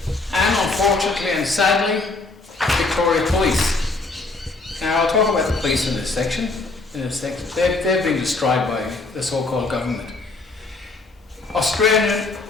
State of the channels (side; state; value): right; quieter; 3.5 dB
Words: And unfortunately and sadly, Victoria Police. Now I'll talk about the police in this section. They've been destroyed by the so-called government.